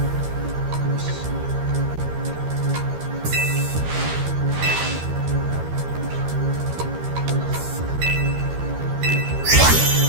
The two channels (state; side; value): late; left; 13 ms